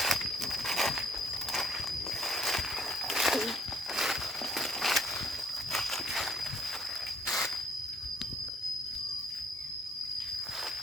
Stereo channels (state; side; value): normal; both; correlation 0.62